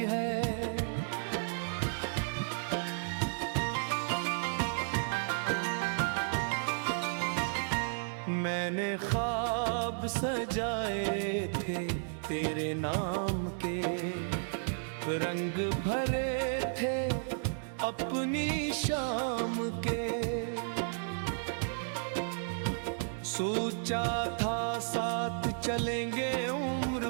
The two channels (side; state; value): left; silent; digital silence